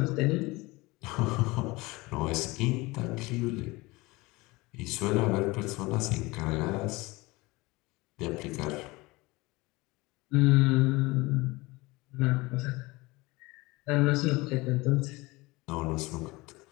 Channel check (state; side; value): quieter; right; 22.5 dB